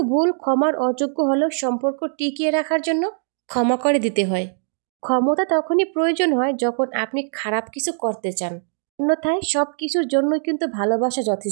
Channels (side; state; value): left; silent; digital silence